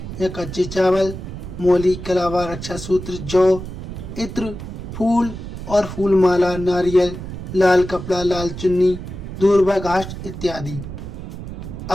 या कच्चे चावल, मोली, कलावा, रक्षा सूत्र, जौ, इत्र, फूल और फूल माला, नारियल, लाल कपड़ा, लाल चुन्नी, दूर्वा घास इत्यादि।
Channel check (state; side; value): noise; right; rumble, 9 dB below the sound